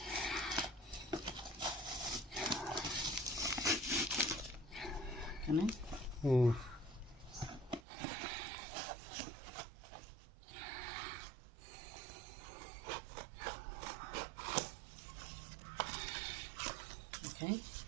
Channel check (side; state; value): left; drops out; at 7.8 s